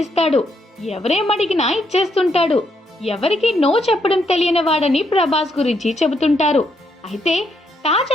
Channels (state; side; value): normal; both; correlation 0.76